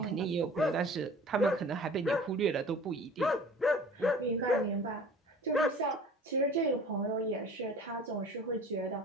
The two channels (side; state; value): both; normal; correlation 0.44